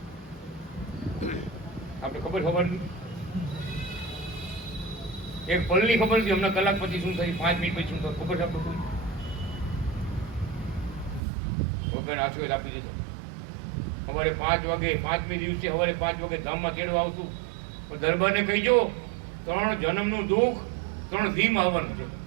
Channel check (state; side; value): drops out; left; at 11.2 s